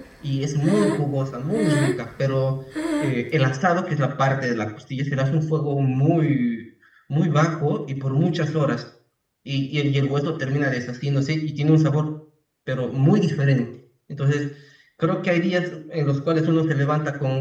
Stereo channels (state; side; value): identical; both; correlation 1.00